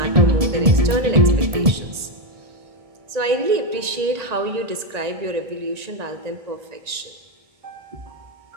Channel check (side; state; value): left; late; 1.9 ms